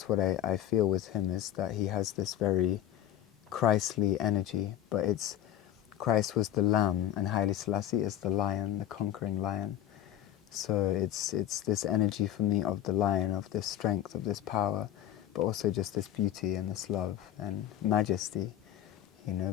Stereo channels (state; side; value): quieter; right; 11.9 dB